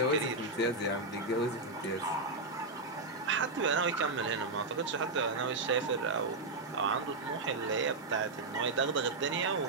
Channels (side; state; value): left; quieter; 3.3 dB